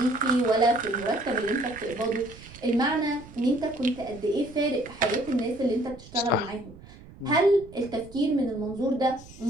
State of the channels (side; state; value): right; noise; rumble, 19 dB below the sound